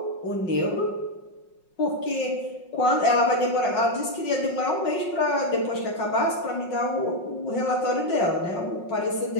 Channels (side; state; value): right; late; 5.5 ms